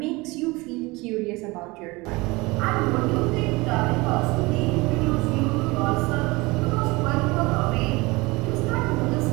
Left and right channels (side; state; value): left; quieter; 23.4 dB